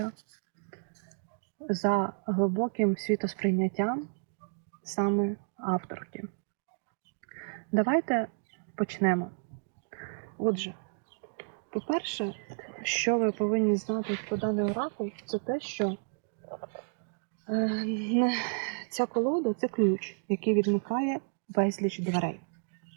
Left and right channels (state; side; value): silent; left; digital silence